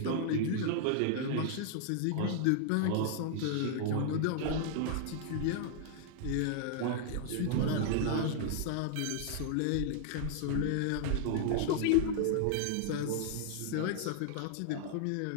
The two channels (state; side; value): different; both; correlation -0.01